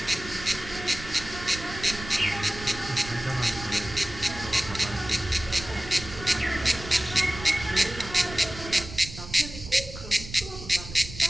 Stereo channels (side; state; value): right; noise; rumble, 12 dB below the sound